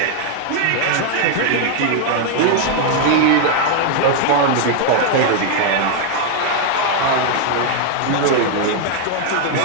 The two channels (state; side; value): different; both; correlation 0.00